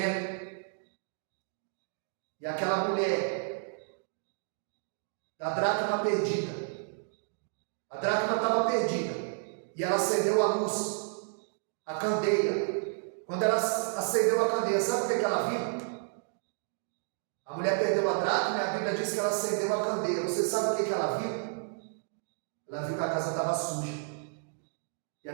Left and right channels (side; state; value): left; silent; digital silence